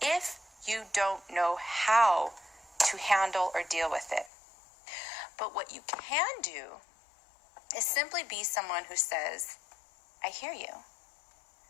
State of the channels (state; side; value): drops out; right; at 4.3 s